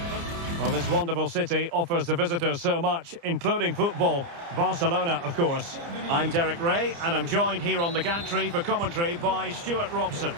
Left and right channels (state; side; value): late; left; 29 ms